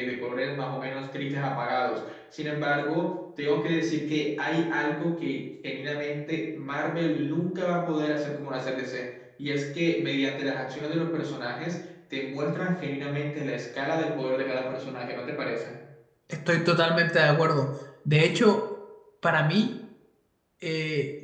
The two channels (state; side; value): identical; both; correlation 1.00